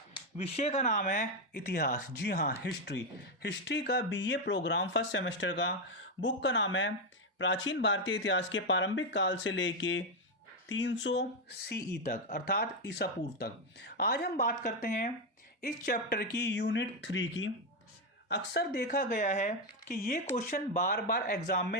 विषय का नाम है इतिहास। जी हाँ, हिस्ट्री का बीए प्रोग्राम फर्स्ट सेमेस्टर का। बुक का नाम है प्राचीन भारतीय इतिहास के प्रारंभिक काल से लेके 300 सीई तक, अर्थात ईसा पूर्व तक। आज हम बात करते हैं इस चैप्टर की यूनिट 3 की। अक्सर देखा गया है कि ये क्वेश्चन बार बार एग्जाम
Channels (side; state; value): both; normal; correlation 0.06